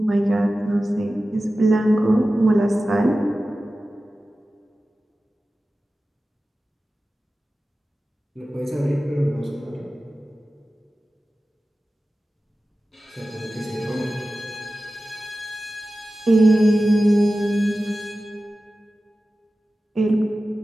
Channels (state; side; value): normal; both; correlation 0.95